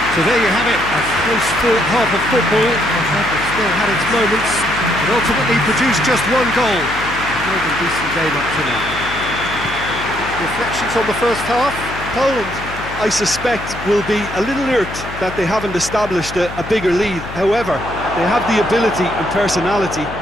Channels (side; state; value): left; noise; hum, 12 dB below the sound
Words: So there you have it, a close-fought half of football. It still had its moments, but ultimately produced just one goal. A more than decent game up to now. Reflections on the first half? Poland, I suspect, will be a little irked that they haven't established a bigger lead. However, they have the ability and personality